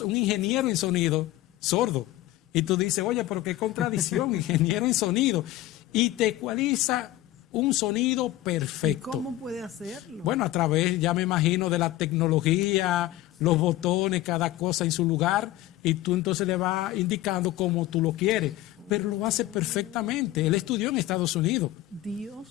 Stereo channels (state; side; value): quieter; right; 15.6 dB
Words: un ingeniero en sonido sordo. Y tú dices, oye, pero qué contradicción, ingeniero en sonido. Y te ecualiza un sonido perfecto. ¿Y cómo puede hacerlo? Bueno, a través, ya me imagino, de la tecnología, los botones, cada cosa en su lugar, y tú entonces le vas indicando cómo tú lo quieres. Pero lo hace perfectamente. Él estudió en Estados Unidos.